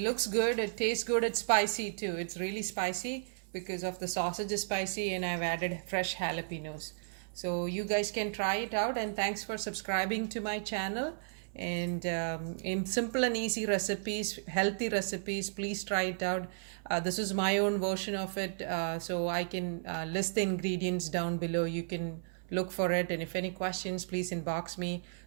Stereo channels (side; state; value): left; silent; 55 dB below the other